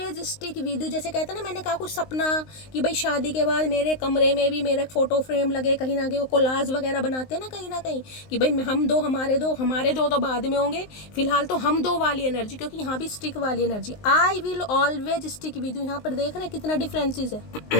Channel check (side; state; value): right; late; 19 ms